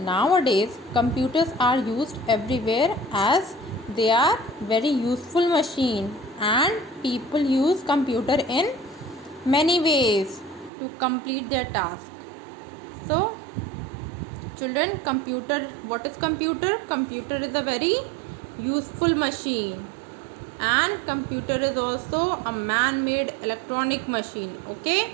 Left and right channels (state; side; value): drops out; left; at 10.7 s